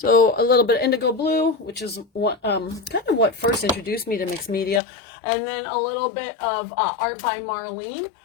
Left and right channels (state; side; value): drops out; right; at 4.8 s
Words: a little bit of Indigo Blue, which is what kind of what first introduced me to mixed media, and then a little bit of Art by Marlene.